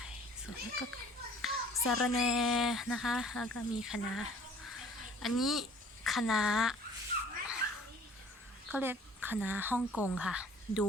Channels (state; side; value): normal; both; correlation 0.52